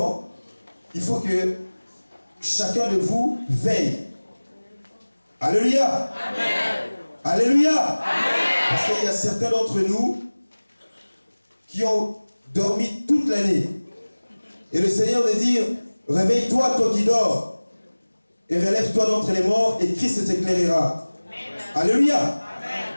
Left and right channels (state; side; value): inverted; both; correlation -1.00